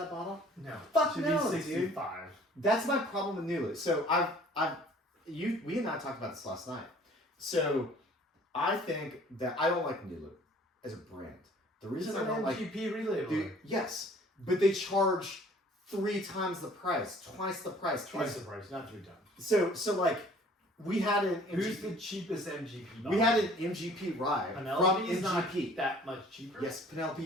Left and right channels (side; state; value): both; normal; correlation 0.53